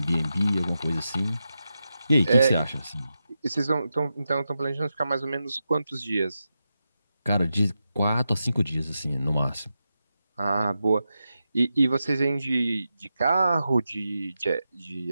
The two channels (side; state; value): both; inverted; correlation -0.89